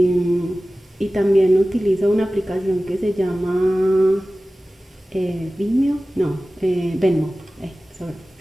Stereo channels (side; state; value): both; normal; correlation 0.96